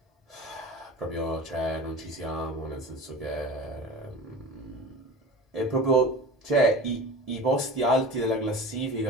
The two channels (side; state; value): both; normal; correlation 0.35